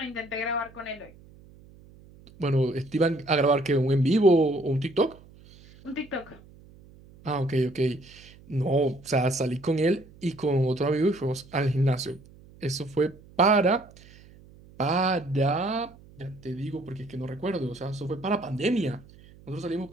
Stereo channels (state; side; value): noise; right; hum, 23 dB below the sound